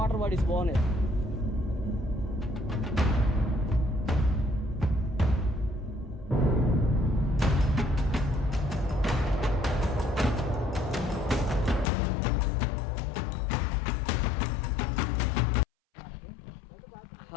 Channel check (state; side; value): drops out; right; at 11.9 s